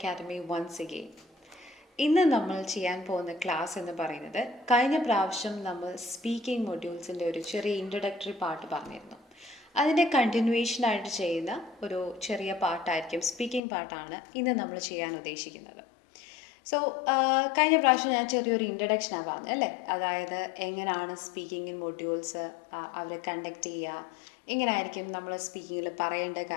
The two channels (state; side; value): drops out; right; at 13.6 s